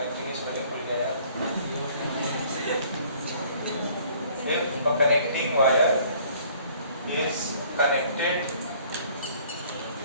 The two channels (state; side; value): inverted; both; correlation -0.56